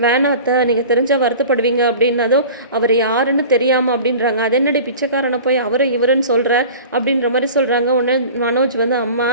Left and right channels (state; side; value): inverted; both; correlation -0.39